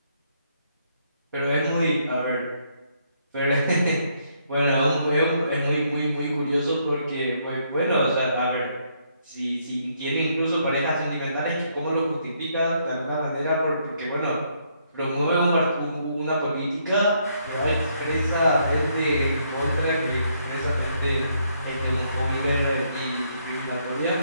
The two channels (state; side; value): inverted; both; correlation -0.72